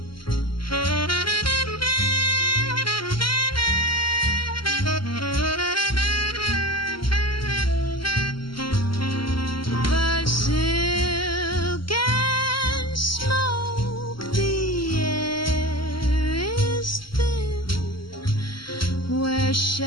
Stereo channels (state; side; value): late; right; 0.73 ms